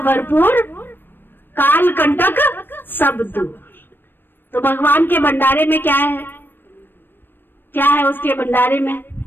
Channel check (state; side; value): late; right; 0.096 ms